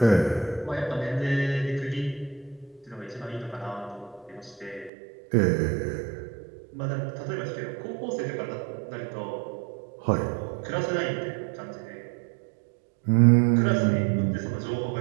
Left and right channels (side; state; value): left; drops out; at 4.9 s